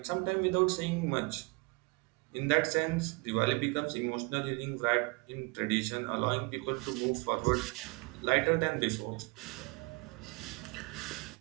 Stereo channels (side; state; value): left; quieter; 29.1 dB